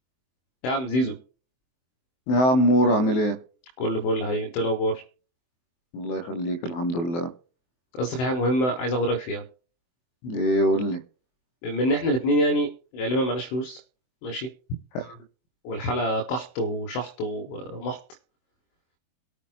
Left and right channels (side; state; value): right; late; 23 ms